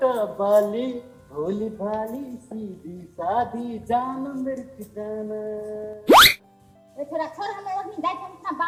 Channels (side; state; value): both; identical; correlation 1.00